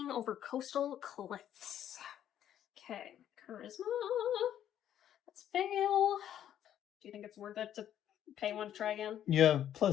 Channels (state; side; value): quieter; right; 10.7 dB